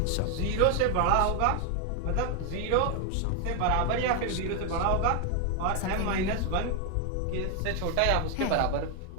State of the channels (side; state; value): both; different; correlation 0.01